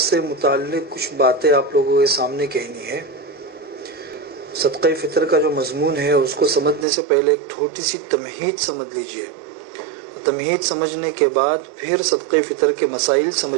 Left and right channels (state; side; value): drops out; left; at 6.9 s